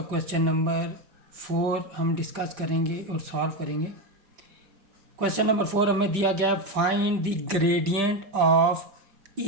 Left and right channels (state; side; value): late; left; 5.1 ms